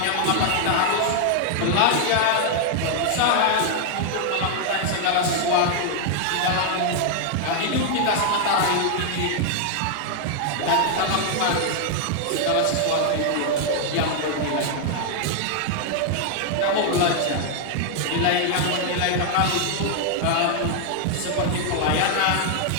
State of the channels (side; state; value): both; different; correlation 0.00